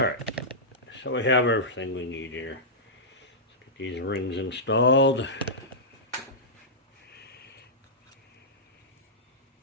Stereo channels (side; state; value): both; normal; correlation -0.14